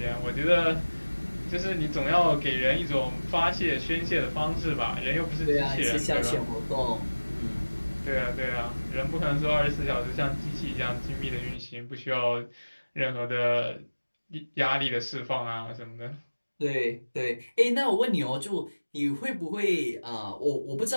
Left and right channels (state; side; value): inverted; both; correlation -1.00